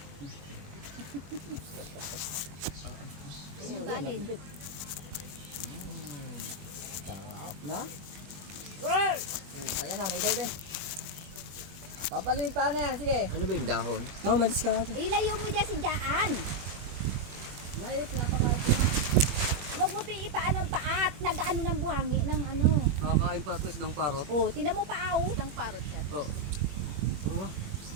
Yung kanin. Sarap na. Well! Kaya na, may baby. Papalitan na yan, sige. Ano ba yung dahon? No, malis ka natin. Ilayo mo dyan si Jaan. Mayop, napakain ko na. Huwag mo piipaan ang paat. Nag-ano ng buhangi ng ano. Nakakain pa ito ng parot. Oh, tinan mo paaw. Ng parot yan. Oo.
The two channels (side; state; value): left; late; 21 ms